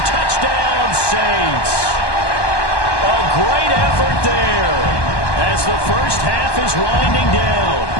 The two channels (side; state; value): right; late; 1.2 ms